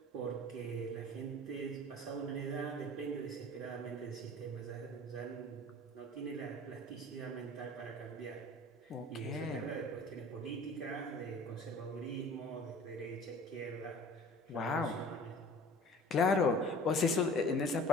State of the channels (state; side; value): normal; both; correlation 0.44